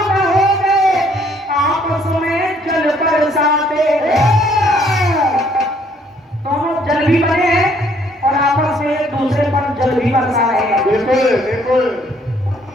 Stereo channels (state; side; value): normal; both; correlation 0.64